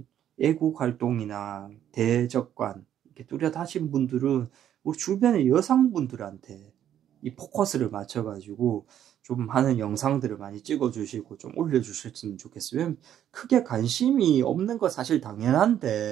애국 활동이나 대적관 이렇게 뚜렷하신 분들은 우리 주변의 여성분들한테 이 포커스를 맞춰가지고 좀 하는 영상들을 많이 찍어주시고 좀 올려주셨으면 좋겠어요. 크게 관심이 없는 거 사실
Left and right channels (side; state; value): left; quieter; 10.5 dB